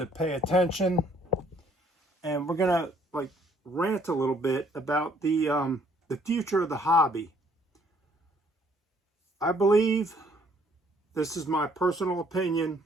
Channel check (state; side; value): normal; both; correlation 0.63